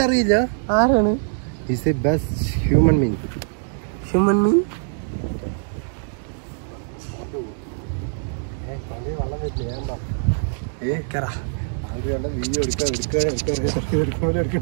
ആരാണ്? ബെസ്റ്റ് ഹ്യൂമൻ മീൻ. ഹ്യൂമൻ മീൻ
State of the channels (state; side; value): silent; left; digital silence